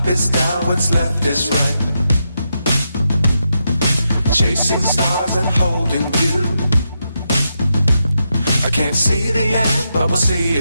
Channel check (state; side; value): inverted; both; correlation -0.84